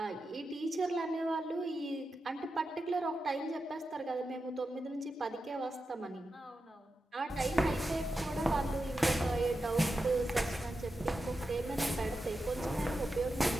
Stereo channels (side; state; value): both; normal; correlation 0.89